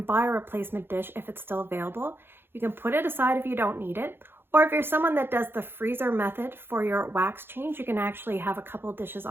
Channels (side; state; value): left; late; 0.10 ms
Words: buy a replacement dish if it's still available. You can put it aside if you don't need it. Or if you're someone that does the freezer method for your wax change, you can actually have a couple dishes